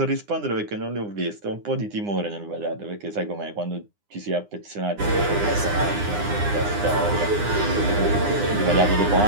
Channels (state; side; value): late; left; 9.8 ms